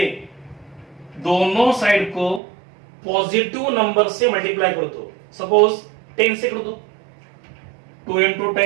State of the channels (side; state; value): left; drops out; at 2.4 s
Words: दोनों साइड को पॉजिटिव नंबर से मल्टीप्लाई कर दो। सपोज 10 से कर दो, 2 इंटू